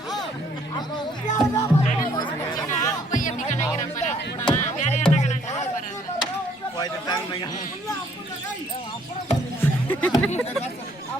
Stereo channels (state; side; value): normal; both; correlation 0.64